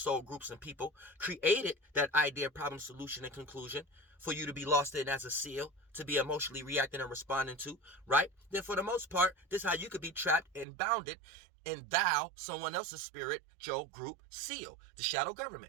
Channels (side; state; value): left; drops out; at 10.7 s